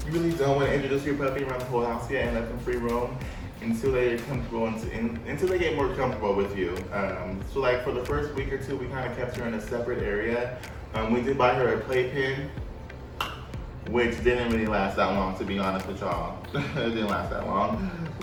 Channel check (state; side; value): identical; both; correlation 1.00